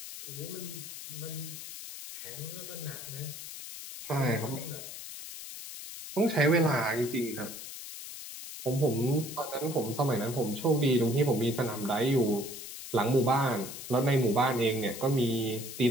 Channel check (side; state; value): left; noise; hiss, 10 dB below the sound